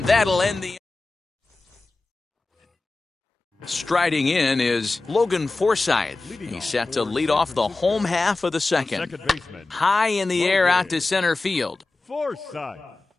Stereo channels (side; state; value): right; quieter; 3.4 dB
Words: that'll end the... Striding in is Logan Forsythe. He's set to lead off the home half of the second. High in the air out to center field. Forsythe.